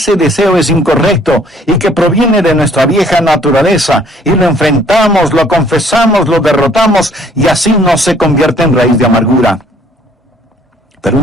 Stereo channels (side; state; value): both; normal; correlation 0.60